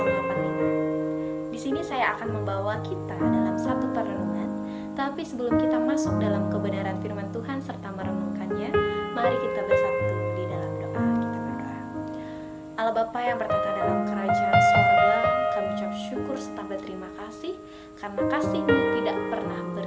Di sini saya akan membawa kita dalam satu perenungan, tapi sebelum kita masuk dalam kebenaran firman Tuhan serta merenungkannya, mari kita bersatu di dalam doa. Kita berdoa. Allah Bapa yang bertata dalam kerajaan sorga, kami ucap syukur serta berterima kasih karena kasih-Mu tidak pernah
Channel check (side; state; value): both; identical; correlation 1.00